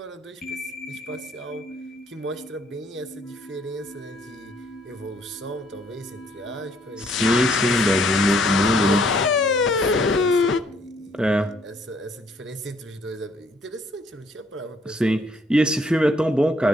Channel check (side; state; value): both; normal; correlation 0.66